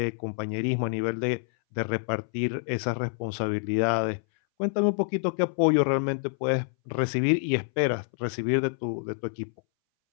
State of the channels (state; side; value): silent; right; 60 dB below the other